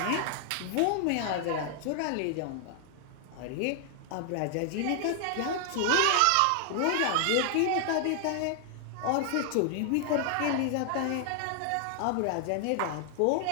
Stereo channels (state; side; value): different; both; correlation 0.00